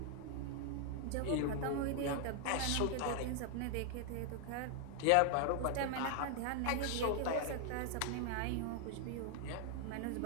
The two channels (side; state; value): both; different; correlation 0.00